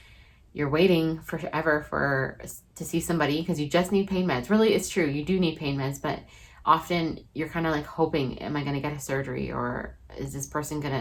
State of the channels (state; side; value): identical; both; correlation 1.00